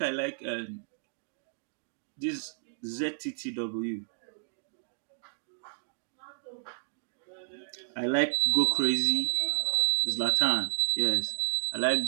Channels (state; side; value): silent; left; digital silence